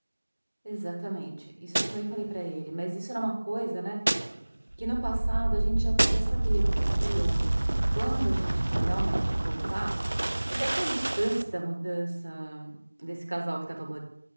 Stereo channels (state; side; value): inverted; both; correlation -1.00